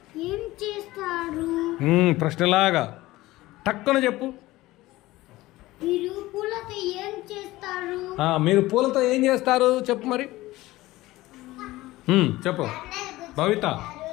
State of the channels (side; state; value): right; quieter; 18.0 dB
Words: ఏం చేస్తారు? ప్రశ్నలాగా టక్కున చెప్పు. మీరు పూలతో ఏం చేస్తారు? మీరు పూలతో ఏం చేస్తారు చెప్పు మరి. చెప్పు భవిత.